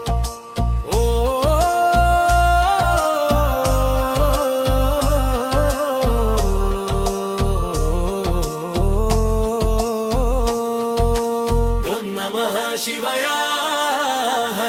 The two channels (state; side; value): identical; both; correlation 1.00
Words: ಓಂ ನಮಃ ಶಿವಾಯ